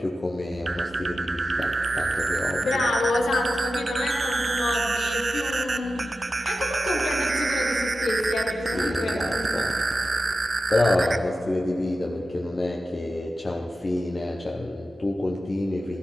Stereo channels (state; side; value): normal; both; correlation 0.92